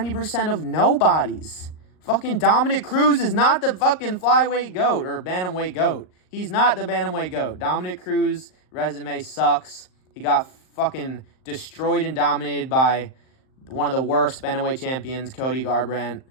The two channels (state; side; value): late; right; 38 ms